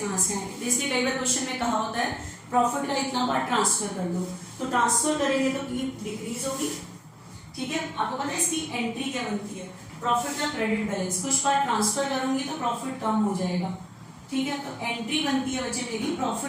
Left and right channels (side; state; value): both; identical; correlation 1.00